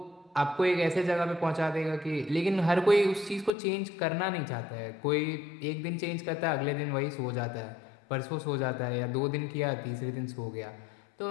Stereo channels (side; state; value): right; drops out; at 3.5 s